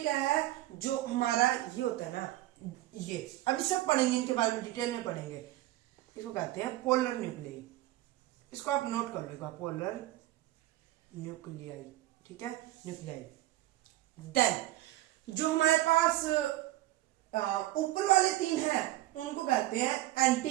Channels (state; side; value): quieter; left; 16.2 dB